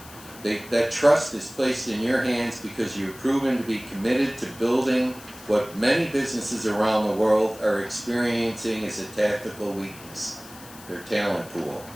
That trust is placed in your hands because you've proven to be committed to building what many businesses around the world are experiencing as a tactical weakness, their talent pool.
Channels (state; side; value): noise; left; hiss, 19 dB below the sound